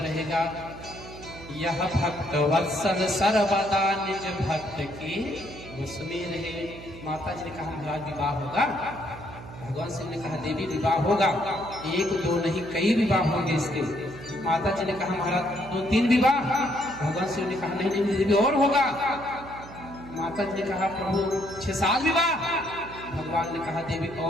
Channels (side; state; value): right; noise; hum, 15 dB below the sound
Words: रहेगा। यह भक्त वत्सल सर्वदा निज भक्त की बस में रहे। माता जी ने कहा महाराज विवाह होगा। भगवान शिव ने कहा देवी विवाह होगा, एक दो नहीं कई विवाह होंगे इसके। माता जी ने कहा महाराज 2-3 विवाह। भगवान शिव ने कहा नहीं नहीं देवी और होगा। माता जी ने कहा प्रभु 6-7 विवाह। भगवान ने कहा देवी